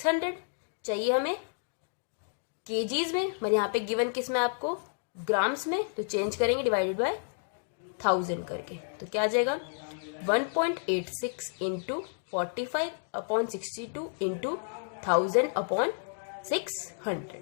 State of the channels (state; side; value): silent; right; digital silence